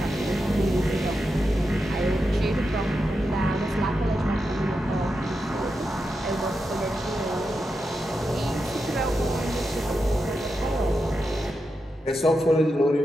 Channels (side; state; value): both; normal; correlation 0.88